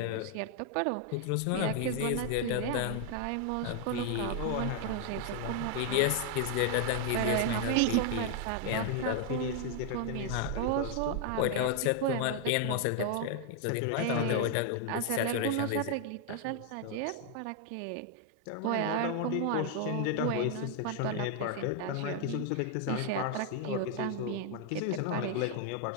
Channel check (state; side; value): different; both; correlation 0.00